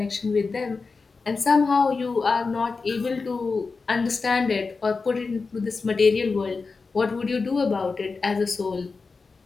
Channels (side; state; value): right; quieter; 4.4 dB